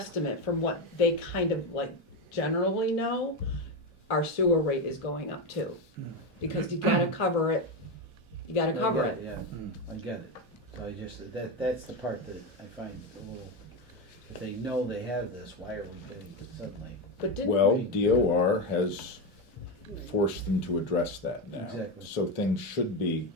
from what they kind of like generally know, our sewer rate is going up too. Because you gotta cover it, you gotta cover I it. get Yeah, I get it. So I just, that's the part that I find a little, if they know they have this, why are we getting it suddenly? But didn't, Well, DOR has forced them to address that now. Exactly. So things should be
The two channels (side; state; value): both; normal; correlation 0.13